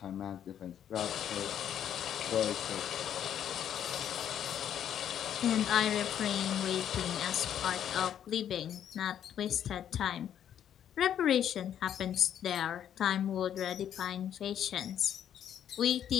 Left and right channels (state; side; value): quieter; right; 9.8 dB